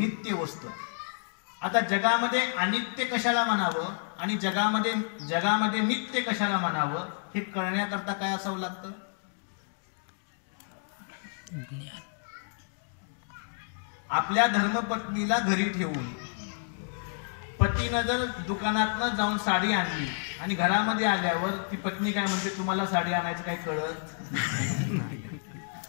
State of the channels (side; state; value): right; silent; digital silence